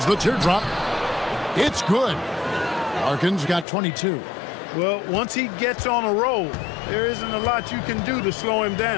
the teardrop. It's good. Larkin's got 22. Well, once he gets on a roll, there isn't a lot you can do to slow him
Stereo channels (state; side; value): drops out; right; at 3.7 s